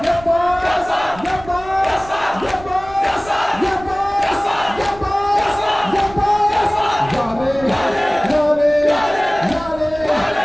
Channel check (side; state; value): right; noise; rumble, 18 dB below the sound